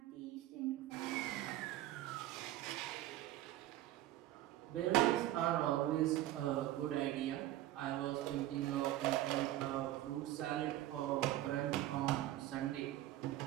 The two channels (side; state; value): left; quieter; 14.6 dB